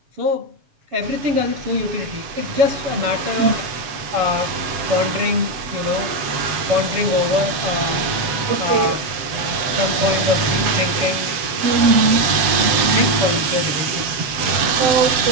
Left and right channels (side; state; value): left; late; 7.4 ms